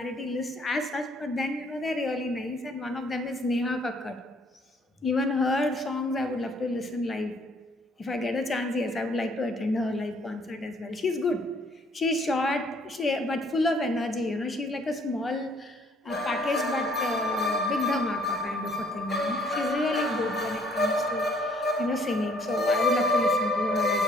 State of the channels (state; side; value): normal; both; correlation 0.62